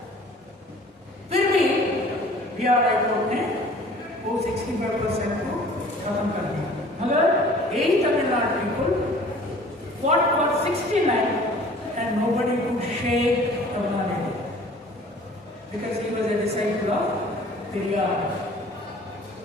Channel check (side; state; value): both; normal; correlation 0.49